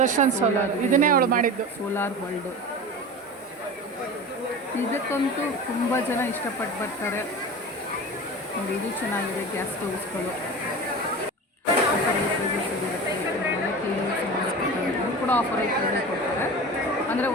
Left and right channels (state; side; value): normal; both; correlation 0.31